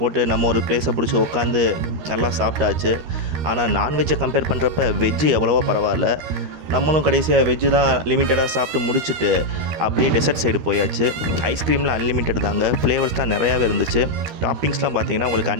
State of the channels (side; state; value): left; late; 13 ms